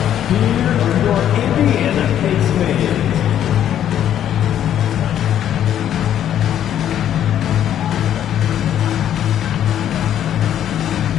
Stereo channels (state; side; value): quieter; right; 10.5 dB